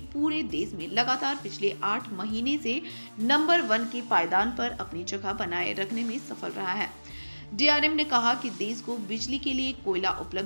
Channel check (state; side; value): inverted; both; correlation -1.00